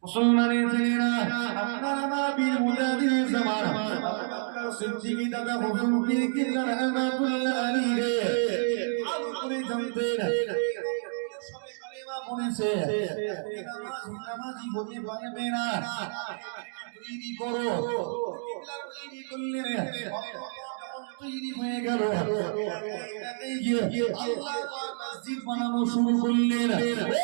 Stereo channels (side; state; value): left; silent; digital silence